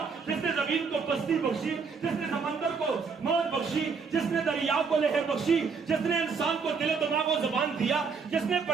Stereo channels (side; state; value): left; quieter; 5.3 dB